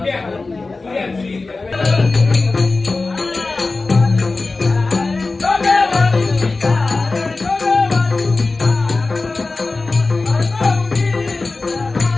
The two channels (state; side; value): quieter; right; 3.6 dB